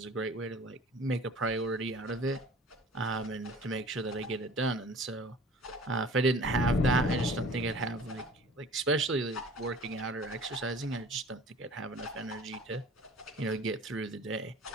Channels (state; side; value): normal; both; correlation 0.46